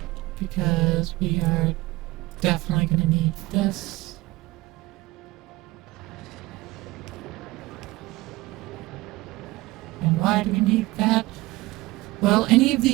because we are definitely going to need this. And why do we need that? Well, any of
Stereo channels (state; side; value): quieter; left; 19.3 dB